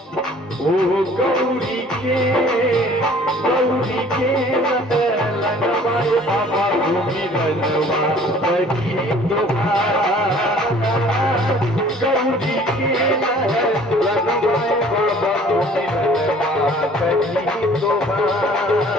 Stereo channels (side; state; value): both; normal; correlation 0.52